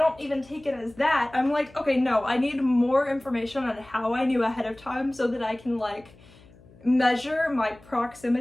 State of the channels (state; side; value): noise; left; hum, 25 dB below the sound